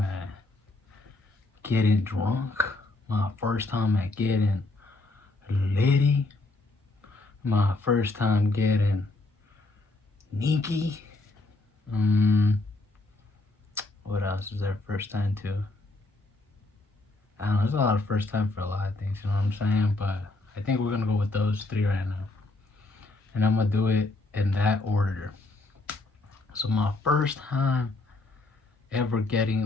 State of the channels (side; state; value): right; quieter; 3.0 dB